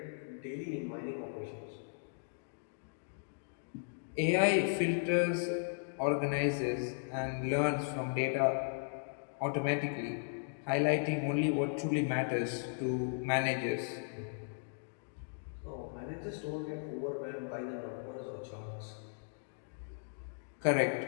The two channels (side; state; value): right; silent; digital silence